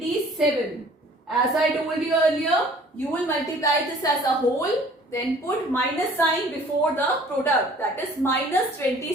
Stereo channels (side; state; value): both; normal; correlation 0.52